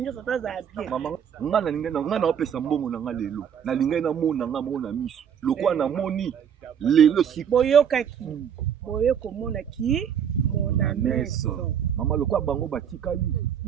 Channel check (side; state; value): left; quieter; 8.2 dB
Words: nyonso taza bien. Mama nga na opesa mbongo na nga lelo. Na linga na mona nga mona miso. Lokwa na moni lelo si boyokaki. Boyoko mona ki mona meso. Mama lokwa bango batikali